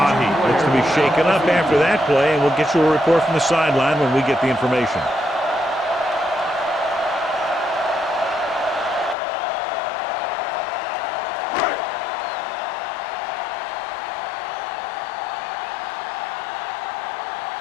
looks to be shaken up after that play, and we'll get you a report from the sideline when we get the information.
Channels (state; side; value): drops out; right; at 9.2 s